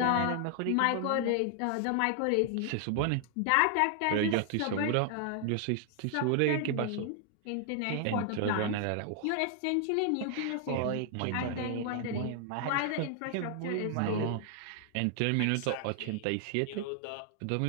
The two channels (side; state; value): both; different; correlation 0.00